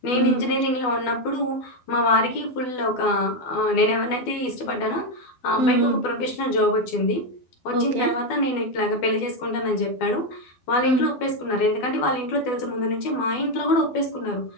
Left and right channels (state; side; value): late; right; 12 ms